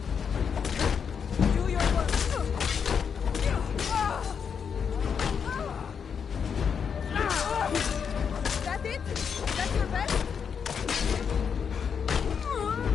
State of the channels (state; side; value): quieter; right; 6.8 dB